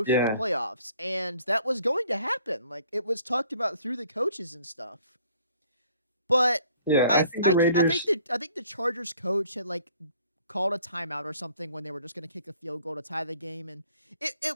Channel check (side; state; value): both; inverted; correlation -0.58